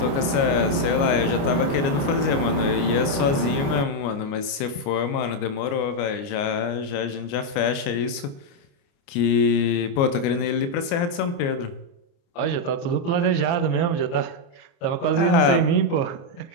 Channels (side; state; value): right; late; 29 ms